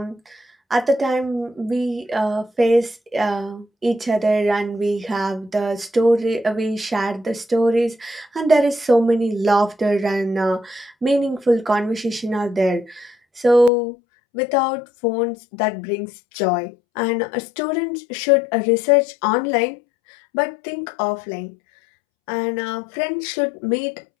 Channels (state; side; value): drops out; right; at 13.7 s